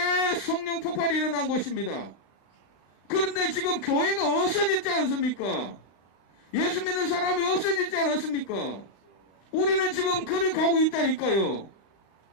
폭발이 일어난 곳입니다. 그런데 지금 교회가 없어졌지 않습니까? 예수 믿는 사람이 없어졌지 않았습니까? 우리는 지금 그를 가고 있다니까요.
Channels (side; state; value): right; late; 35 ms